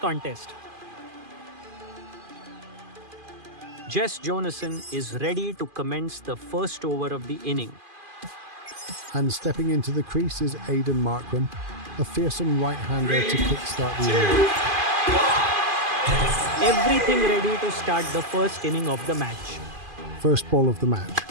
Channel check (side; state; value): left; late; 2.5 ms